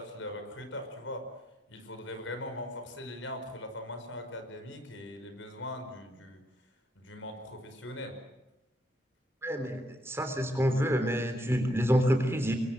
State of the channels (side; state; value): both; normal; correlation 0.75